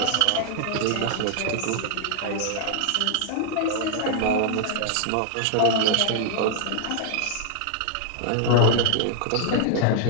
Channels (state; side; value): different; both; correlation 0.00